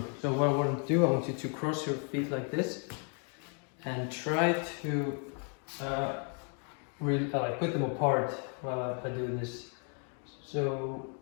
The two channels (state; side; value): quieter; right; 39.7 dB